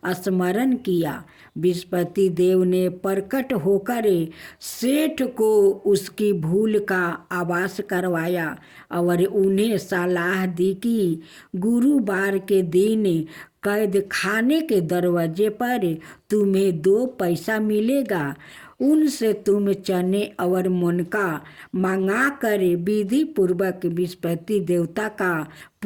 स्मरण किया। बृहस्पति देव ने प्रकट होकर सेठ को उसकी भूल का आभास करवाया और उन्हें सलाह दी कि गुरुवार के दिन कैद खाने के दरवाजे पर तुम्हें 2 पैसा मिलेगा। उनसे तुम चने और मुनका मंगा कर विधि पूर्वक बृहस्पति देवता का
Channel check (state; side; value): identical; both; correlation 1.00